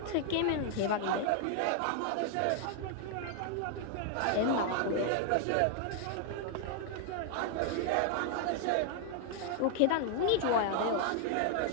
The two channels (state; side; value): different; both; correlation 0.00